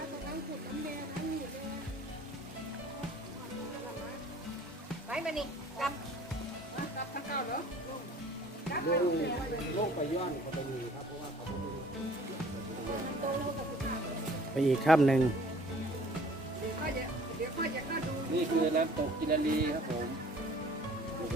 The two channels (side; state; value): both; normal; correlation 0.52